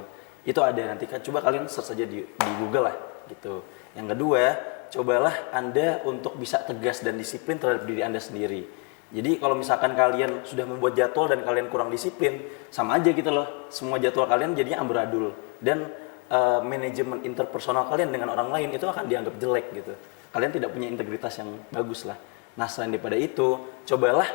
loh. Itu ada, nanti coba kalian search saja di Google lah gitu. Yang kedua, cobalah Anda untuk bisa tegas dan disiplin terhadap diri Anda sendiri. Jadi kalau misalkan kalian sudah membuat jadwal dan kalian kurang disiplin, sama aja gitu loh. Semua jadwal kalian jadinya amburadul. Dan manajemen interpersonal kalian dengan orang lain itu akan dianggap jelek gitu. Kalian tidak punya integritas yang bagus lah. Nah selain daripada itu, cobalah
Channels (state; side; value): quieter; right; 35.7 dB